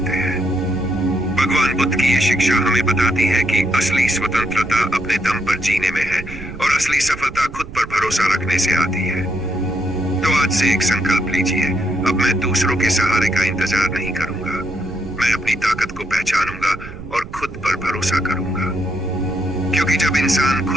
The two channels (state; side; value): noise; right; rumble, 13 dB below the sound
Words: हैं। ये शिक्षा हमें बताती है कि असली स्वतंत्रता अपने दम पर जीने में है और असली सफलता खुद पर भरोसा रखने से आती है। तो आज से एक संकल्प लीजिए, अब मैं दूसरों के सहारे का इंतजार नहीं करूंगा। मैं अपनी ताकत को पहचानूंगा और खुद पर भरोसा करूंगा, क्योंकि जब इंसान